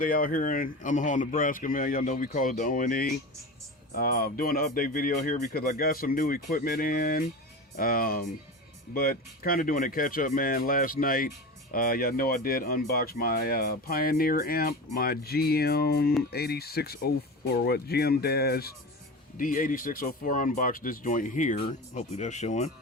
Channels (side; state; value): both; normal; correlation 0.28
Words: out here in Omaha, Nebraska, man. Y'all know we call it the ONE. Doing an update video here because I got some new equipment in. But kind of doing a catch up, man. Last night, y'all know I did unbox my Pioneer amp, my GM8604, GM-D8604. Unboxed this joint here. Hopefully that's showing.